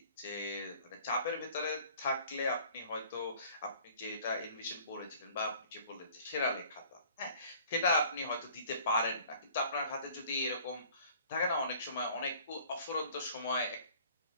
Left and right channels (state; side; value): inverted; both; correlation -0.52